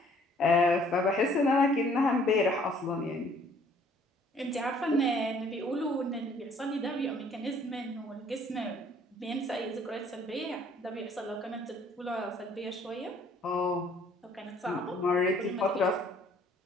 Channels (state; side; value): normal; both; correlation 0.60